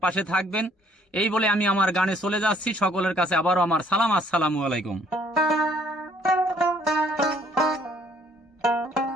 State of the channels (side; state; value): both; normal; correlation 0.63